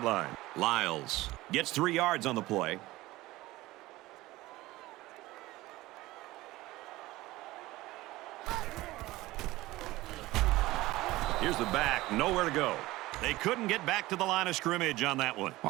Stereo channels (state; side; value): quieter; left; 18.4 dB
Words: line. Lyles gets 3 yards on the play. Here's the back, nowhere to go. They couldn't get back to the line of scrimmage on that one.